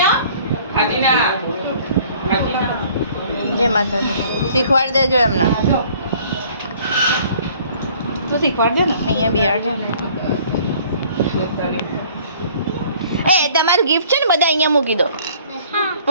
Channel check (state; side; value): inverted; both; correlation -0.55